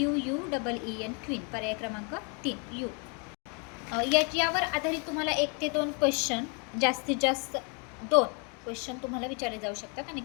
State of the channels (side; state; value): right; quieter; 35.9 dB